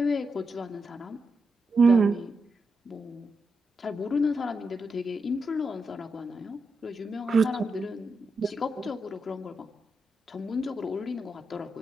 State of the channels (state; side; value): normal; both; correlation 0.86